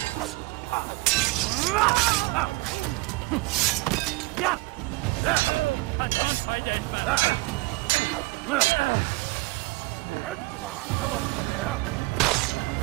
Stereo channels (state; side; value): quieter; left; 23.9 dB